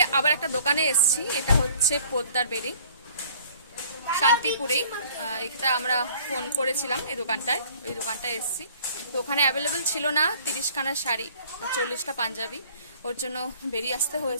আবার একটা দোকানে এসেছি, এটা হচ্ছে পোদ্দার বেরি, শান্তিপুরেই। এটা আমরা ফোন করেছিলাম এই দোকানটায়, ওই দোকানটায় এসেছি। তো ওখানে অ্যাভেলেবেল ছিল না 30খানা শাড়ি, 40টা পাঞ্জাবি, ওর জন্য বেরিয়ে আসতে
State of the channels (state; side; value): inverted; both; correlation -0.53